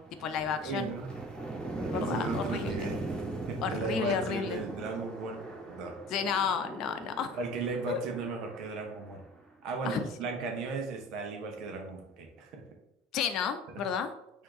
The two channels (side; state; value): both; normal; correlation 0.42